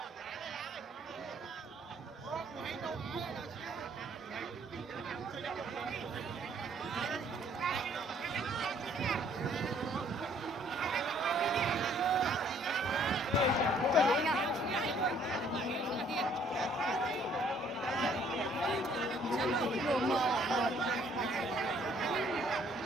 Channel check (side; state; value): both; normal; correlation 0.62